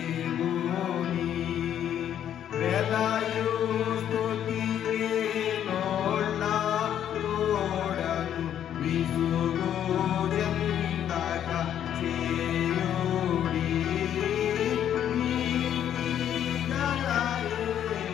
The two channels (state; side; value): quieter; right; 10.0 dB